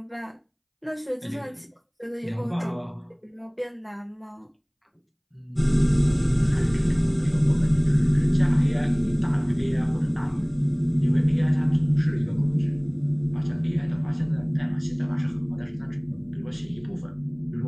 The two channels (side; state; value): both; identical; correlation 1.00